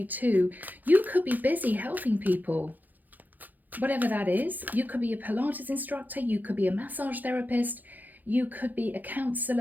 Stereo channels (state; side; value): late; left; 0.084 ms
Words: too. You could be busy helping people. Whatever that is, you could be a Pilates instructor, you could be a massage therapist, you could be a